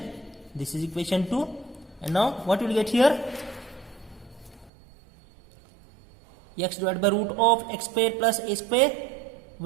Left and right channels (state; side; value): drops out; left; at 4.7 s